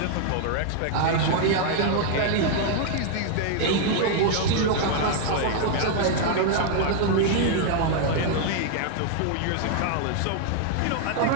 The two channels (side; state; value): both; different; correlation 0.00